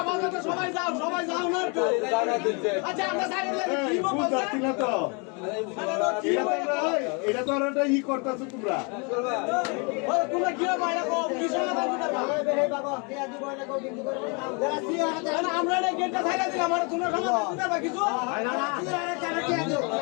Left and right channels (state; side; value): quieter; right; 33.2 dB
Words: আমাদের তো সবাই যাও না একটু আচ্ছা আমরা সাইডে কি বলবো না তো এটা তো একটা ই করতেছো তোমরা তোমরা কি বাইরে কো কি সমাধান দিতে আমরা না গেটটা ছাইরা দিলাম আমরা তোমরা সমাধান দিতে পারবা কিছু